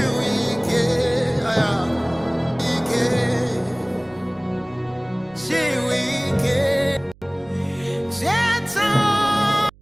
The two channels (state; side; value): noise; right; hum, 26 dB below the sound